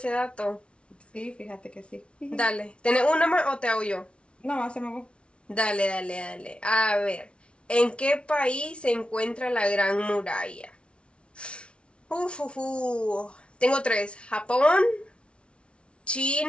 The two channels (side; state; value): right; late; 0.059 ms